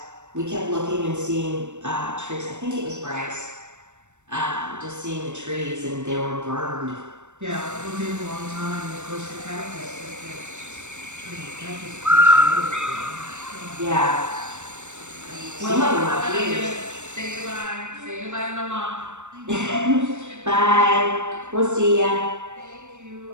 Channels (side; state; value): left; late; 0.84 ms